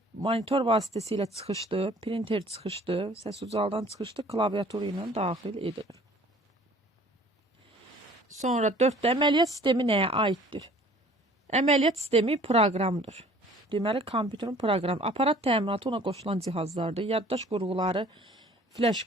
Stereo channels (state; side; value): normal; both; correlation 0.52